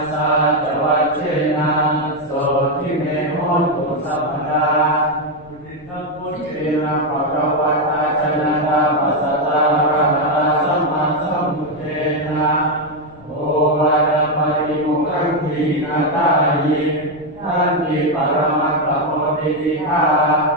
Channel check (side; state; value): left; noise; rumble, 24 dB below the sound